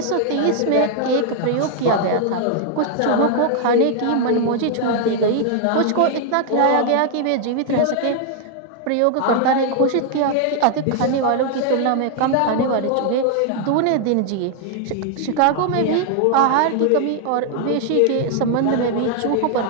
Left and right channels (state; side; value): different; both; correlation 0.00